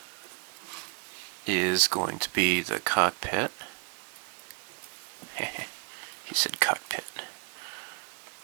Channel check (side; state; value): left; quieter; 33.9 dB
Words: is going to be the cockpit. He said cockpit.